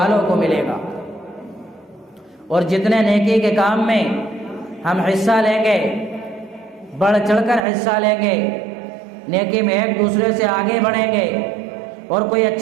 کو ملے گا، اور جتنے نیکی کے کام میں ہم حصہ لیں گے، بڑھ چڑھ کر حصہ لیں گے، نیکی میں ایک دوسرے سے آگے بڑھیں گے، اور کوئی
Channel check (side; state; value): left; drops out; at 7.7 s